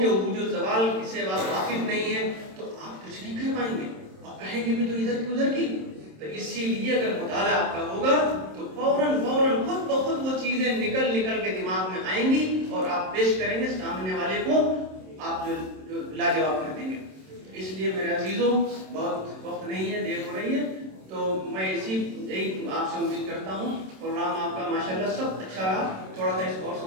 عروج و زوال سے واقف نہیں ہے، تو آپ کچھ نہیں کہہ پائیں گے، آپ کہیں گے بھی تو ادھر کی ادھر کی۔ تو اسی لیے اگر مطالعہ آپ کا ہوگا تو فوراً خود بخود وہ چیزیں نکل کے دماغ میں آئیں گی اور آپ پیش کریں گے سامنے والے کو، آپ جو لاجواب کر دیں گے۔ اس لیے میرے عزیزوں بہت وقت نہیں ہے، دیر ہو رہی ہے، تو میں یہی آپ سے امید کرتا ہوں پروگرام آپ کا ماشاءاللہ سب اچھا رہا، تھوڑا سا اس کو اور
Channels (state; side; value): late; left; 27 ms